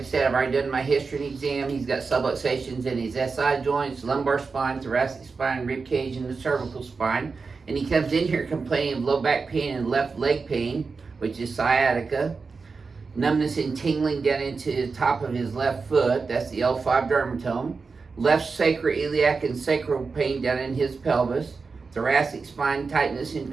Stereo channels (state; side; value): quieter; left; 4.6 dB